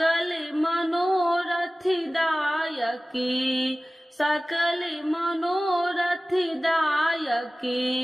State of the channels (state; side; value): normal; both; correlation 0.97